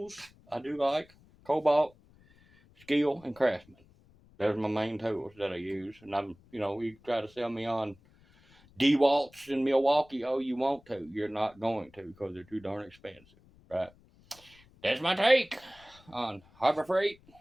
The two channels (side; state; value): left; noise; rumble, 28 dB below the sound